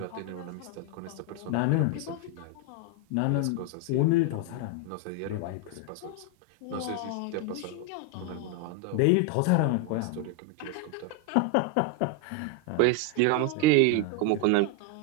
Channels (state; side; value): different; both; correlation 0.01